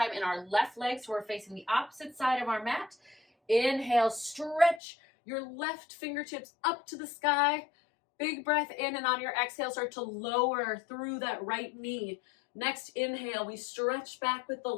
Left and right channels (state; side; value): drops out; right; at 4.8 s